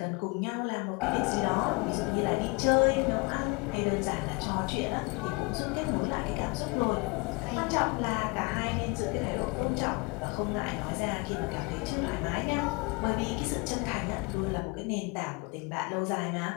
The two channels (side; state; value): right; quieter; 28.1 dB